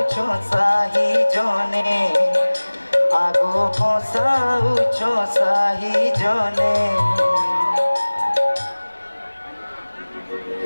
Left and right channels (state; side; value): inverted; both; correlation -1.00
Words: সাহি জনে আগো হসাউছ সাহি জনে